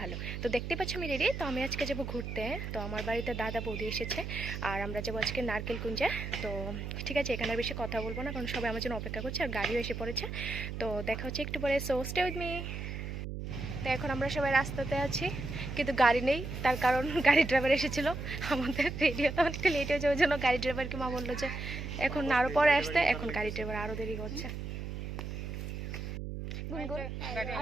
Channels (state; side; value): noise; right; hum, 6 dB below the sound